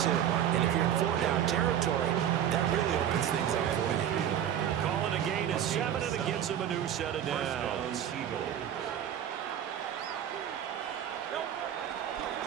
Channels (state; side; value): quieter; left; 10.1 dB